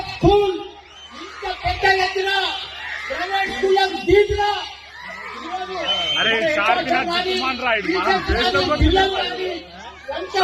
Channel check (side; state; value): both; identical; correlation 1.00